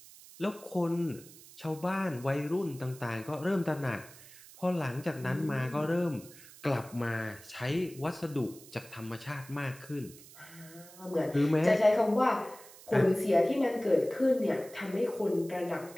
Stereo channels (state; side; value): noise; right; hiss, 20 dB below the sound